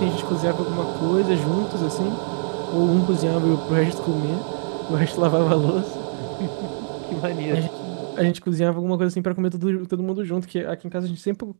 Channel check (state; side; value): silent; left; digital silence